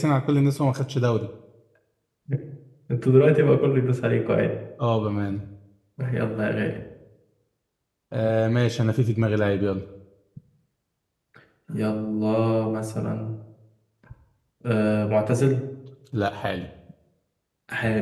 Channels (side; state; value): both; identical; correlation 1.00